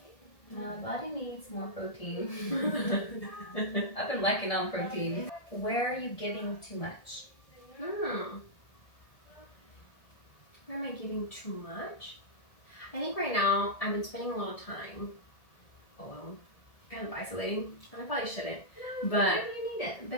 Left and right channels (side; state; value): right; late; 1.7 ms